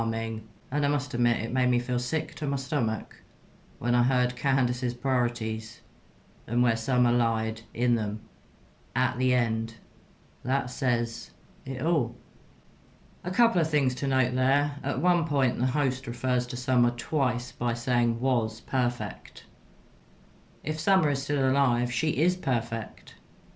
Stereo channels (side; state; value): both; identical; correlation 1.00